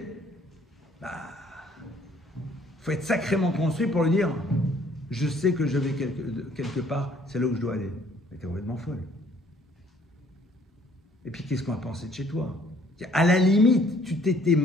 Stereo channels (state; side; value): normal; both; correlation 0.60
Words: Faut être sacrément construit pour lui dire, je sais que je vais quelque part, c'est là où je dois aller. Mais t'es complètement folle. Et puis, qu'est-ce qu'on va penser de chez toi? À la limite, tu t'étais